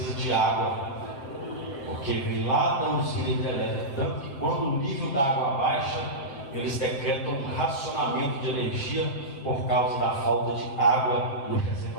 de água, porque vem lá da usina hidrelétrica, tanto que quando o nível da água baixa, eles decretam um racionamento de energia por causa da falta de água no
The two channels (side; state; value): right; late; 7.3 ms